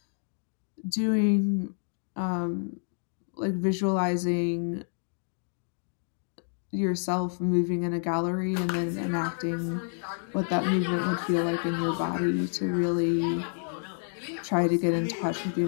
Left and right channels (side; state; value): right; silent; digital silence